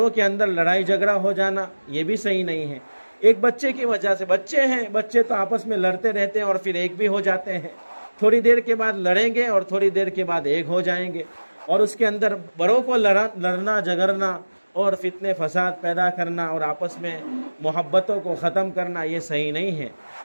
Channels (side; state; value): both; inverted; correlation -1.00